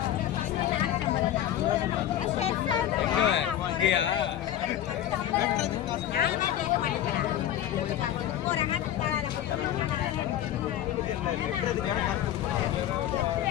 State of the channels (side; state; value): right; quieter; 11.7 dB